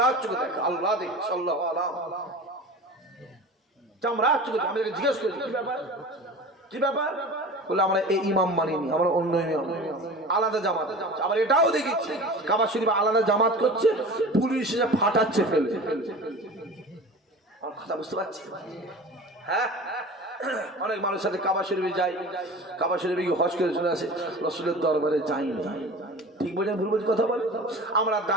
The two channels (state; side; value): normal; both; correlation 0.36